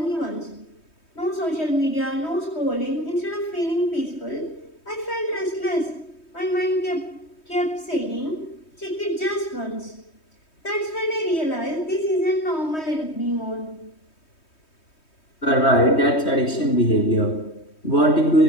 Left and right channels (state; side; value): late; right; 3.2 ms